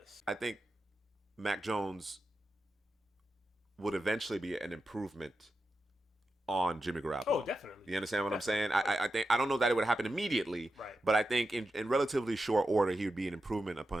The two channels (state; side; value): normal; both; correlation 0.90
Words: I think Mac Jones would eventually be an improvement on Jimmy Garoppolo. Oh, definitely. You understand what I'm saying? I think I don't know that it would happen immediately, right. But I think in relatively short order he would be an improvement